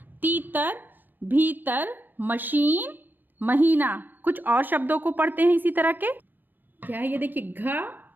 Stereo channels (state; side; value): late; left; 0.092 ms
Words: तीतर भीतर मशीन महीना। कुछ और शब्दों को पढ़ते हैं इसी तरह के। क्या है ये देखिए, घ